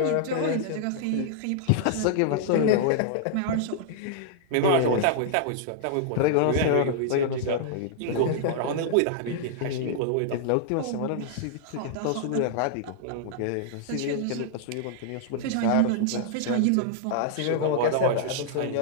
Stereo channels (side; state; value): both; different; correlation -0.01